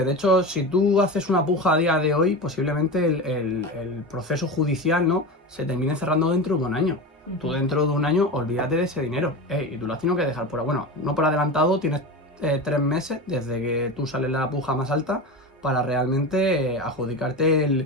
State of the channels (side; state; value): both; normal; correlation 0.25